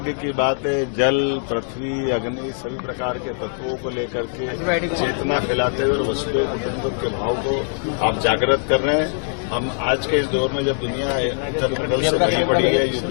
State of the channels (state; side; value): silent; right; 64 dB below the other